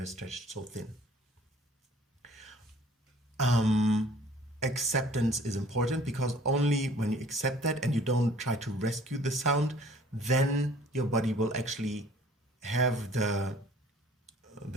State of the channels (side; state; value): both; normal; correlation 0.53